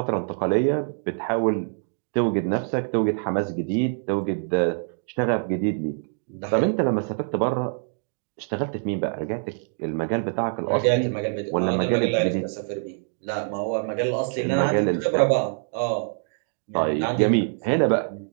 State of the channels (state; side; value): silent; left; digital silence